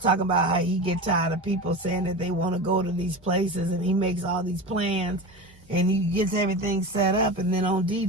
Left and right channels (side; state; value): both; normal; correlation 0.27